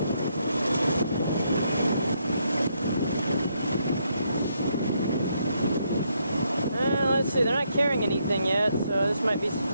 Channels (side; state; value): both; inverted; correlation -0.75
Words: They're not carrying anything yet, so this might be